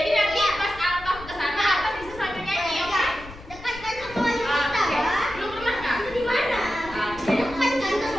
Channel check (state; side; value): noise; left; rumble, 16 dB below the sound